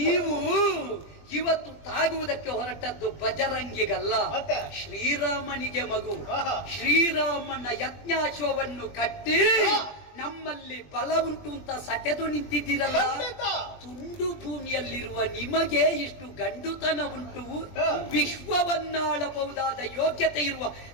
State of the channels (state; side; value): late; right; 20 ms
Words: ಇವತ್ತು ತಾಗುವುದಕ್ಕೆ ಹೊರಟದ್ದು ಬಜರಂಗಿಗಲ್ಲ, ಶ್ರೀರಾಮನಿಗೆ ಮಗು. ಶ್ರೀರಾಮನ ಯಜ್ಞಾಶ್ವವನ್ನು ಕಟ್ಟಿ ನಮ್ಮಲ್ಲಿ ಬಲ ಉಂಟು ಅಂತ ಸಟೆದು ನಿಂತಿದ್ದೀರಲ್ಲ. ತುಂಡು ಭೂಮಿಯಲ್ಲಿರುವ ನಿಮಗೆ ಇಷ್ಟು ಗಂಡುತನ ಉಂಟು, ವಿಶ್ವವನ್ನಾಳಬಹುದಾದ ಯೋಗ್ಯತೆ ಇರುವ